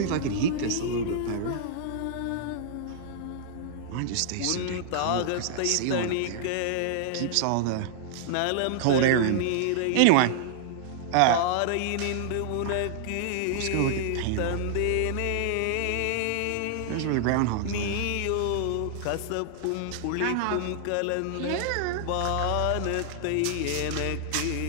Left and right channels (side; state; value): both; different; correlation -0.01